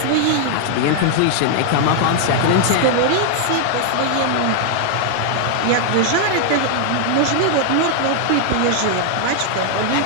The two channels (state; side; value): different; both; correlation 0.00